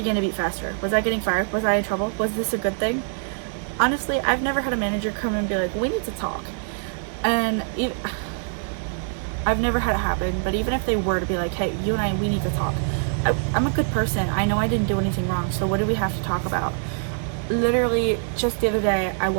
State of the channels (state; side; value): silent; left; 58 dB below the other